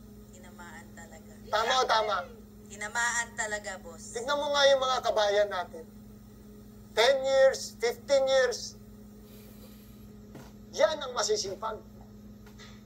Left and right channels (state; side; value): identical; both; correlation 1.00